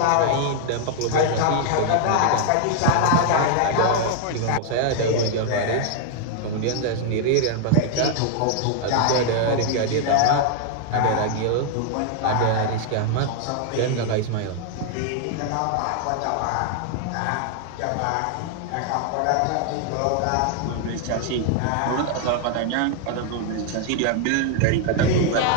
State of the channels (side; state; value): both; different; correlation 0.00